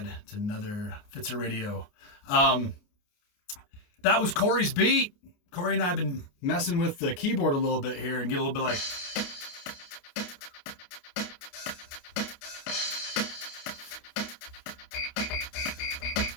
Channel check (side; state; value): right; late; 29 ms